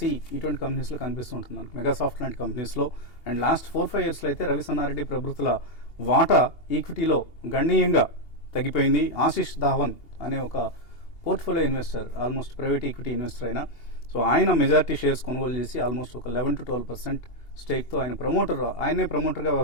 ఇటువంటి కంపెనీస్లో కనిపిస్తుంటుంది మనకు మెగాసాఫ్ట్ లాంటి కంపెనీస్లో. అండ్ లాస్ట్ 4-5 yearsలో అయితే రవి సన్నారెడ్డి ప్రభృతుల వాటా ఈక్విటీలో గణనీయంగా తగ్గిపోయింది. ఆశిష్ ధావన్ అనే ఒక portfolio investor, almost private equity investor అయినా, సో ఆయన మెజారిటీ షేర్స్ కొనుగోలు చేసి ఆల్మోస్ట్ ఒక 11 to 12% స్టేక్తో ఆయనే ప్రమోటర్గా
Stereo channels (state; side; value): late; right; 2.8 ms